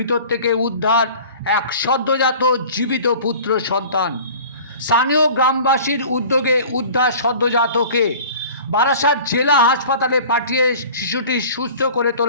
থেকে উদ্ধার এক সদ্যজাত জীবিত পুত্র সন্তান। স্থানীয় গ্রামবাসীর উদ্যোগে উদ্ধার সদ্যজাতকে বারাসাত জেলা হাসপাতালে পাঠিয়ে শিশুটি সুস্থ করে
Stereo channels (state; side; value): inverted; both; correlation -0.44